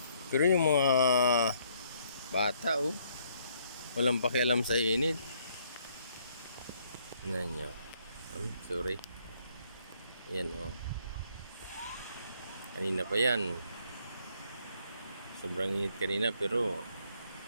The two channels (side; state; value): both; inverted; correlation -0.68